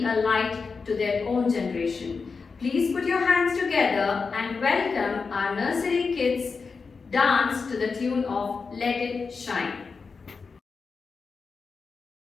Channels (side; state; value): right; quieter; 4.9 dB